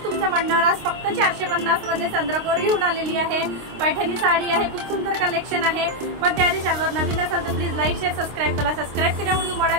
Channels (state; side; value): late; left; 26 ms